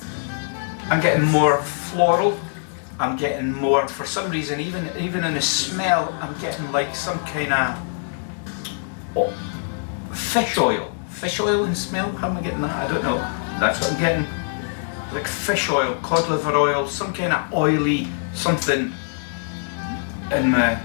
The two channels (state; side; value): silent; right; digital silence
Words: I'm getting more floral. I'm getting more, for some reason, even in the smell, I'm getting like some kind of fish oil. Fish oil in smell? How am I getting that? I don't know. That's what I'm getting. Like fish oil, cod liver oil, some kind of oily something in my